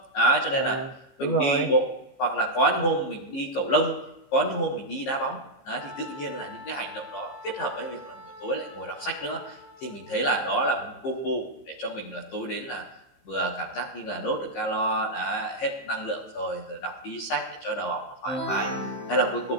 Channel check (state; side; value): late; right; 15 ms